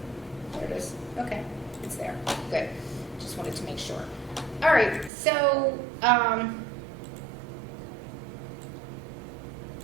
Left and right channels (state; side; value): drops out; left; at 5.1 s